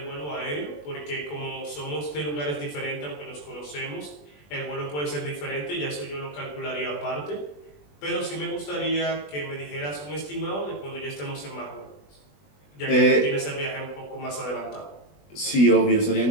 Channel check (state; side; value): late; right; 20 ms